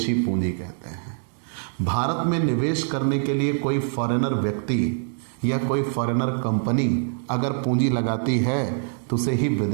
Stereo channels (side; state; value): left; silent; digital silence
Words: पूंजी कहते हैं। भारत में निवेश करने के लिए कोई फॉरेनर व्यक्ति या कोई फॉरेनर कंपनी अगर पूंजी लगाती है तो उसे ही